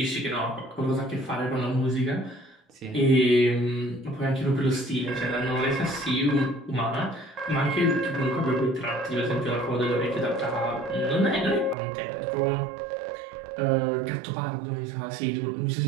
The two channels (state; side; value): drops out; left; at 11.8 s